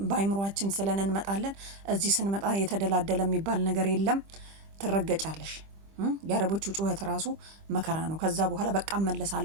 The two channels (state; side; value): late; left; 25 ms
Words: በአይምሮአችን ስለን እንመጣለን። እዚህ ስንመጣ የተደላደለ የሚባል ነገር የለም። ትረገጫለሽ። የአረቦቹ ጩኸት ራሱ መከራ ነው። ከዛ በኋላ በቃ